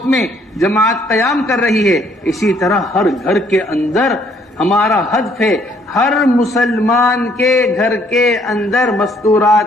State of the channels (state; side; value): normal; both; correlation 0.65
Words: میں جماعت قیام کر رہی ہے، اسی طرح ہر گھر کے اندر ہمارا ہدف ہے ہر مسلمان کے گھر کے اندر